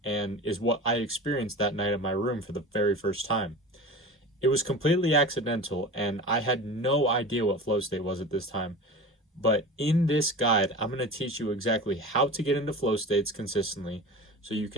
and is what I experienced that night in my room for the very first time. It was completely accidental and I had no idea what flow state was at this time. But in this guide, I'm going to teach you exactly how to get into flow states consistently so you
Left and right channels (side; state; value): both; normal; correlation 0.33